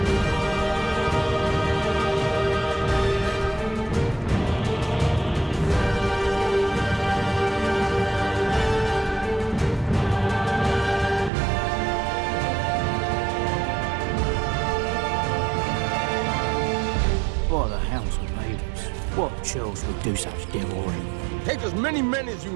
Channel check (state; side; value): drops out; left; at 11.3 s